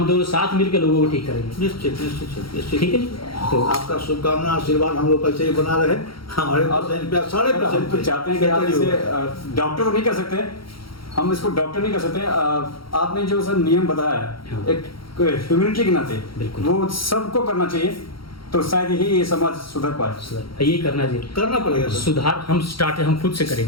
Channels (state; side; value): late; right; 0.74 ms